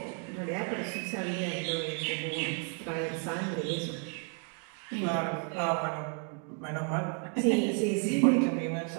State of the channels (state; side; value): quieter; left; 37.5 dB